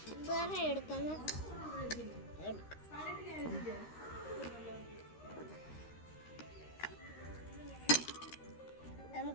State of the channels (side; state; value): right; late; 13 ms